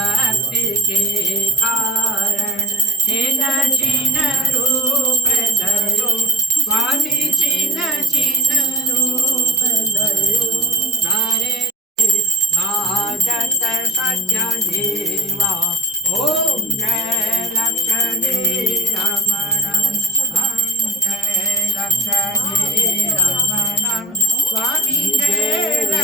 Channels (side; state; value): both; normal; correlation 0.51